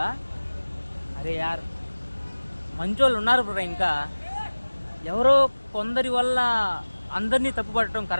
అరే యార్, మంచోళ్ళు ఉన్నారు బ్రో. ఇంకా ఎవరో కొందరి వల్ల అందరినీ తప్పుపడటం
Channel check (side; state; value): both; inverted; correlation -1.00